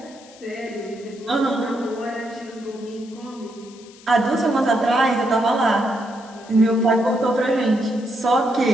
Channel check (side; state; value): left; noise; hiss, 23 dB below the sound